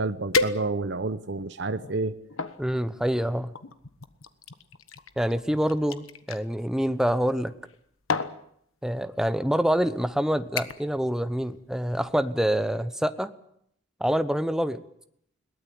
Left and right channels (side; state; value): both; normal; correlation 0.72